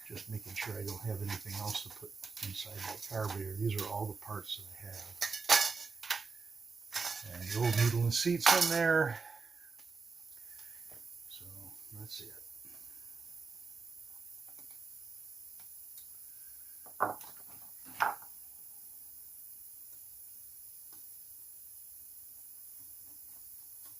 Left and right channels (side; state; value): left; quieter; 4.7 dB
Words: Just making sure I don't have anything else to put inside that carburetor. These are all the parts that I have. And the old needle and seat's in there. So that's it.